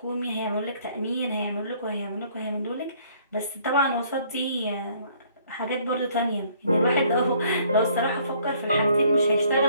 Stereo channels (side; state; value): both; inverted; correlation -0.61